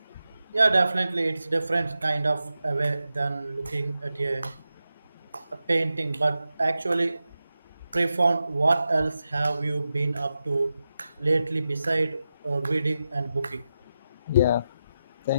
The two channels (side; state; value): both; inverted; correlation -0.90